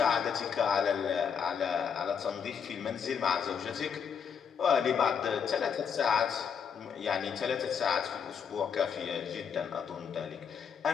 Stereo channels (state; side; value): quieter; right; 7.1 dB